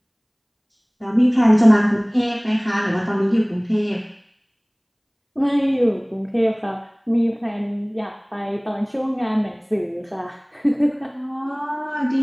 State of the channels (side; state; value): both; identical; correlation 1.00